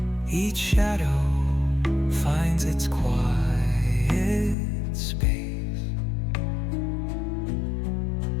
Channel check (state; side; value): drops out; right; at 4.5 s